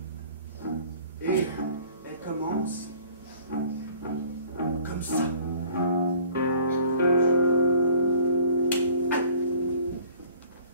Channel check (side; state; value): both; inverted; correlation -0.52